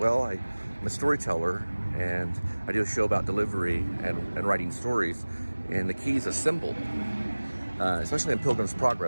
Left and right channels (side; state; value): both; inverted; correlation -1.00